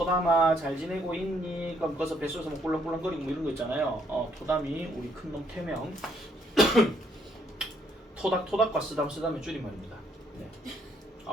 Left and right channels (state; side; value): normal; both; correlation 0.70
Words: 잘 지내고 있니? 그럼 거기서 뱃속에서 뭐 꿀렁꿀렁거리고 뭐 이런 거 있잖아요. 토담이 우리 큰놈 태명. 토닥과 쓰담의 줄임말입니다. 네.